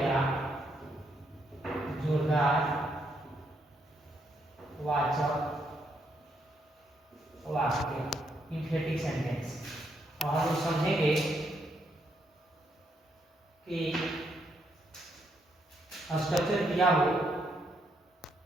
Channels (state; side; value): normal; both; correlation 0.76